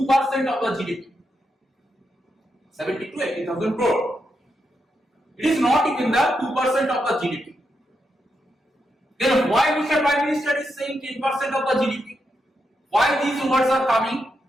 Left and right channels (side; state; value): both; normal; correlation 0.84